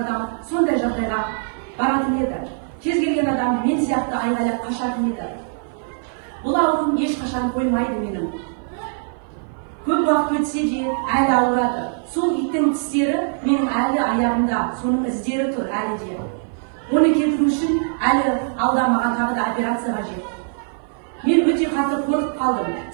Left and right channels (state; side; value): silent; left; 56 dB below the other